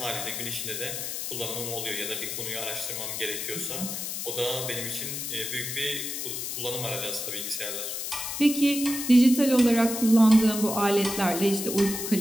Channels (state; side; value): noise; left; hiss, 4 dB below the sound